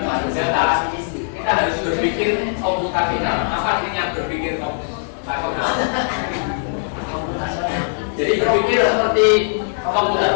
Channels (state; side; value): silent; right; digital silence